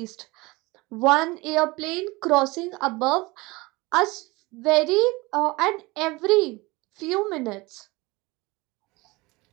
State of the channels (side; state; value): left; quieter; 23.1 dB